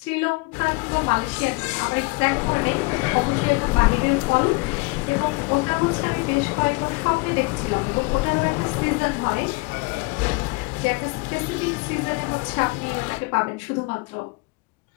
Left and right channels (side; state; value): right; quieter; 26.9 dB